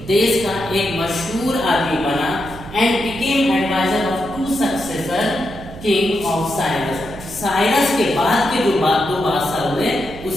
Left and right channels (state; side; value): noise; right; hum, 15 dB below the sound